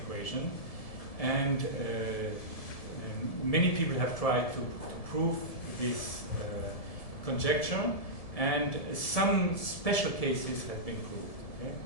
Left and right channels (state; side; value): late; right; 1.7 ms